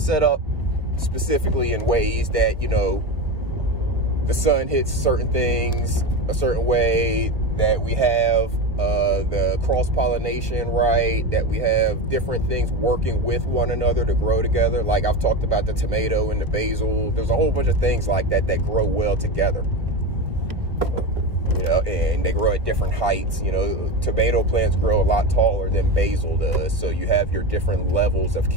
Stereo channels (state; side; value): late; left; 1.3 ms